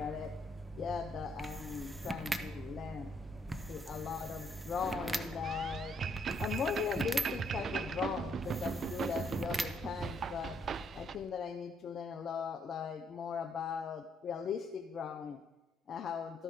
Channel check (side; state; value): both; normal; correlation 0.72